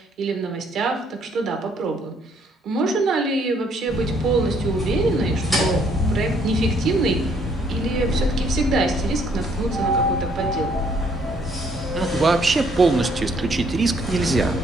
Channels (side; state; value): both; normal; correlation 0.66